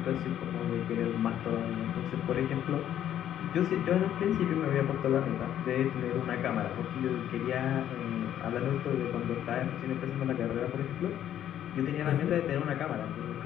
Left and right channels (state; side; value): quieter; right; 10.9 dB